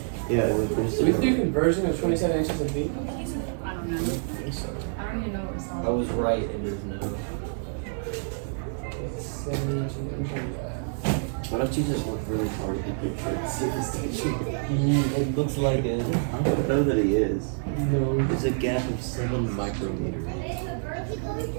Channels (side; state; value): left; silent; digital silence